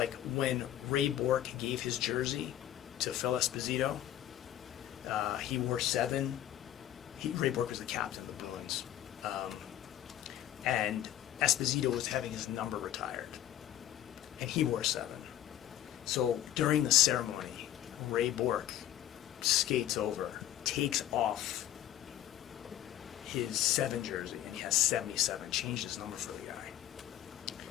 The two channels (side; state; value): right; quieter; 12.4 dB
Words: when Ray Bork gave his jersey to Phil Esposito. He wore 7. Ray Bork was the captain of the Bruins, and Esposito was having his number retired, and he wore 7. So during the ceremony, Ray Bork skates over, takes off his 7 jersey, and he has 77, changed his number for the guy.